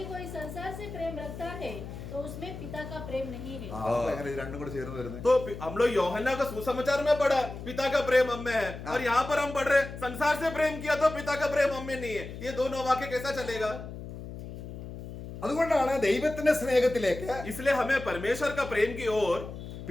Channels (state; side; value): noise; left; hum, 10 dB below the sound